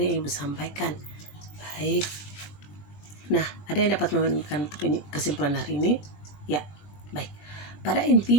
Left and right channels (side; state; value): right; late; 20 ms